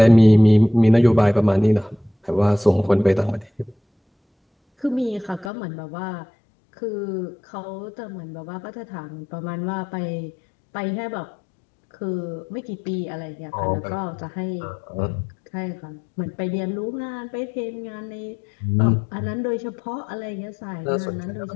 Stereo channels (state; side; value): drops out; right; at 5.5 s